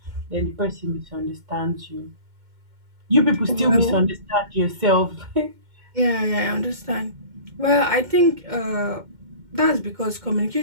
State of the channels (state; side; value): late; left; 2.1 ms